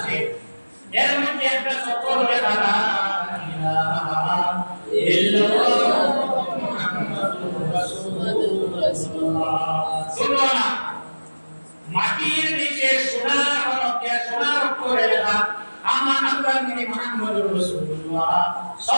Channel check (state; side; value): inverted; both; correlation -1.00